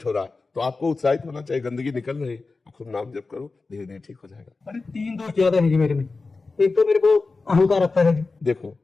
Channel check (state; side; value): quieter; right; 3.9 dB